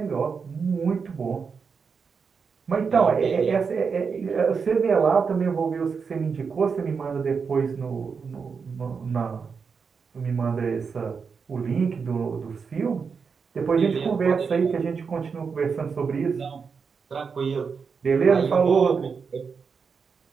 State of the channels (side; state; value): left; quieter; 5.6 dB